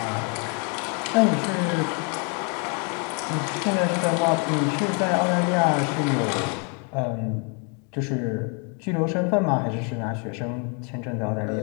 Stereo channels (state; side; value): quieter; right; 36.7 dB